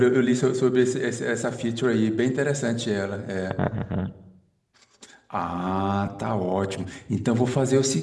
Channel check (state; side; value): identical; both; correlation 1.00